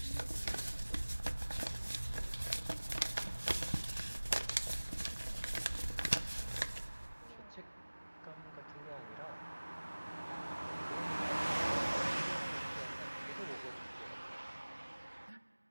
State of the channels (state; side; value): inverted; both; correlation -1.00